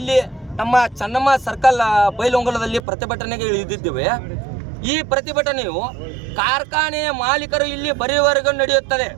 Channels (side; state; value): left; drops out; at 2.8 s